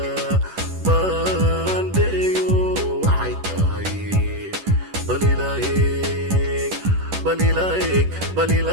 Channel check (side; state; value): left; late; 10 ms